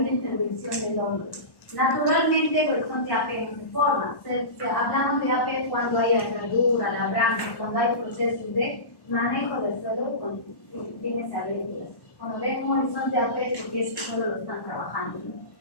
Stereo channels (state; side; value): late; right; 1.1 ms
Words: una intervención del hombre. Naturalmente, el horizonte AP no se forma. Hablamos de AP cuando hay herradura, labranza, cuando hay procesos de manejo del suelo con fines agrícolas. Cuando ven un horizonte AP es porque ese suelo lo están trabajando.